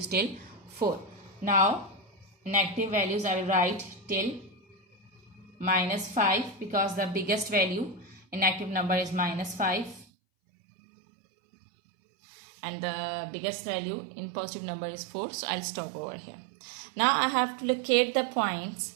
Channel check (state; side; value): drops out; left; at 10.1 s